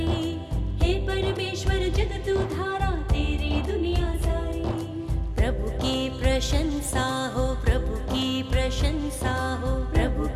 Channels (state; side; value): identical; both; correlation 1.00